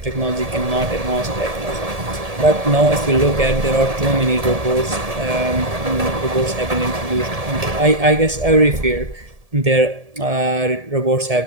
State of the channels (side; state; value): left; late; 1.7 ms